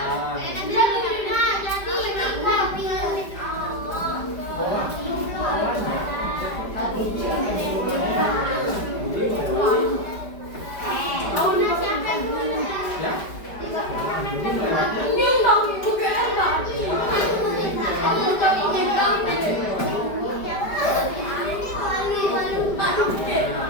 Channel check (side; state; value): right; late; 5.0 ms